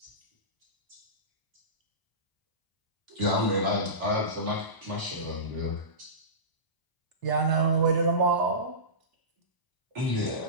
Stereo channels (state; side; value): late; right; 1.0 ms